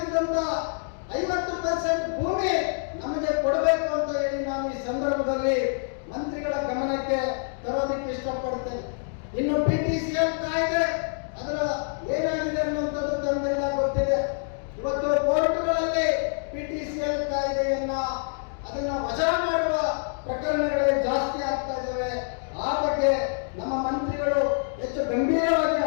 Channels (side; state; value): right; silent; digital silence